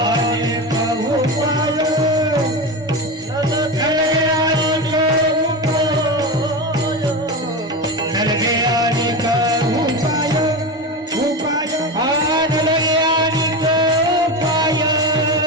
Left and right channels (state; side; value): normal; both; correlation 0.20